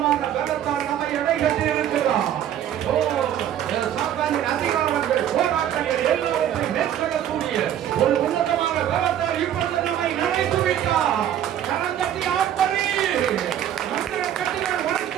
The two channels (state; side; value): quieter; left; 10.7 dB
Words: பலத்தால் நம்மை எடைகட்டி இருக்கிறார். ஓ, சாத்தானின் அதிகாரங்கள், போராட்டங்கள் எல்லாவற்றையும் மேற்கொள்ளக்கூடிய ஒரு உன்னதமான பலத்தால் இப்பொழுது நம்மை நினைத்து விட்டார். கரந்தட்டி ஆர்ப்பரி. மந்திர கட்டுகள்